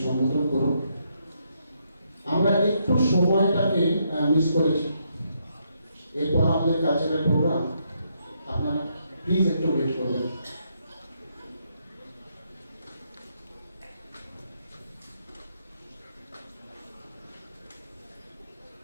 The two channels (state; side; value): inverted; both; correlation -0.76